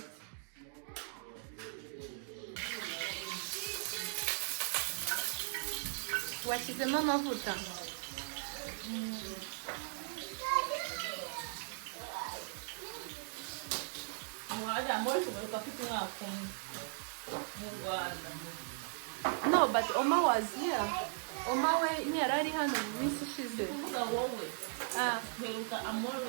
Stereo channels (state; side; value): silent; left; digital silence